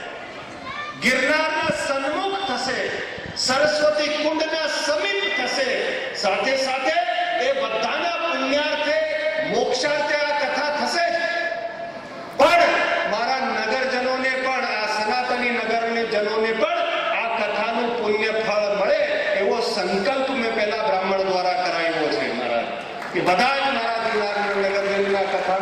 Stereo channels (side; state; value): both; identical; correlation 1.00